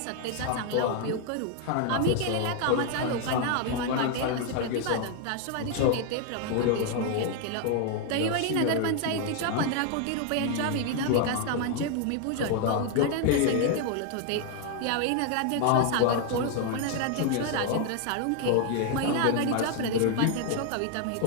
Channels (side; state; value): both; different; correlation 0.00